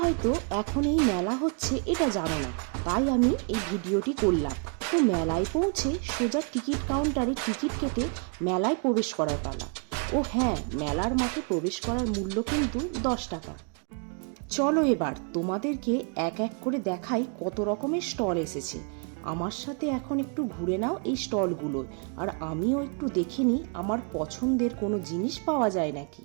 হয়তো এখন এই মেলা হচ্ছে এটা জানো না, তাই আমি এই ভিডিওটি করলাম। তো মেলায় পৌঁছে সোজা টিকিট কাউন্টারে টিকিট কেটে মেলায় প্রবেশ করার পালা। ও হ্যাঁ, মেলার মাঠে প্রবেশ করার মূল্য কিন্তু 10 টাকা। চলো এবার তোমাদেরকে এক এক করে দেখাই কত রকমের স্টল এসেছে। আমার সাথে এখন একটু ঘুরে নাও এই স্টলগুলোয়, আর আমিও একটু দেখে নিই আমার পছন্দের কোনো জিনিস পাওয়া যায় নাকি।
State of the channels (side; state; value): left; quieter; 39.9 dB